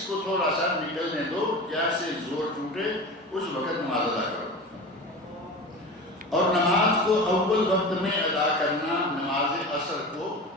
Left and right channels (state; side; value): normal; both; correlation 0.31